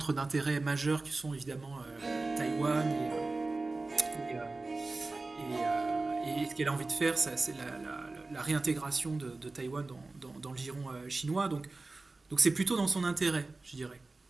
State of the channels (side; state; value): left; quieter; 3.4 dB